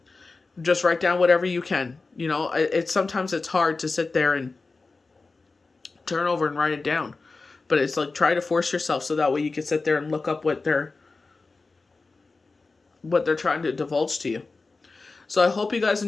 Just write down whatever you can. Sometimes it's hard to sit there and turn over and write it down. But it's like, try to force yourself so that way you can sit there and look up what they're trying to divulge to you. So I hope you guys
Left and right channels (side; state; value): right; quieter; 3.8 dB